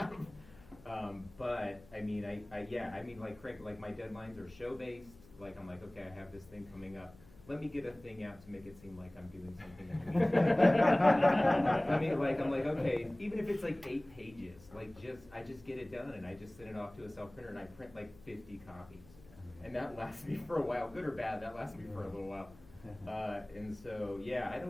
But I mean, like Craig, like my deadlines are show based. Like I'm like, okay, I have this thing coming up. Let me get a thing out to make it seem like I'm doing something. I'm like, okay, even if it's like 8 pages, like I just get it done and I just send it off to a self printer and I print like 50 copies. And that lasts me for a while, good or bad, that lasts me for a little while. And so, yeah,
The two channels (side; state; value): left; noise; hum, 23 dB below the sound